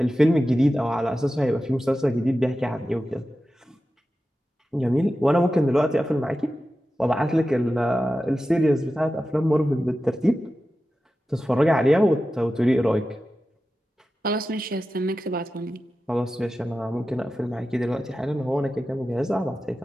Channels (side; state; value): both; normal; correlation 0.93